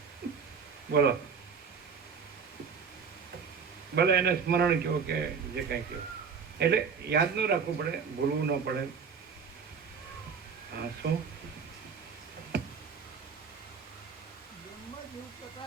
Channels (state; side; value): quieter; left; 6.1 dB